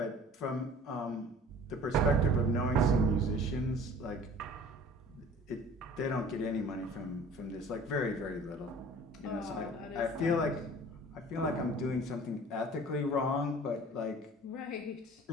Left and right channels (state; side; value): normal; both; correlation 0.47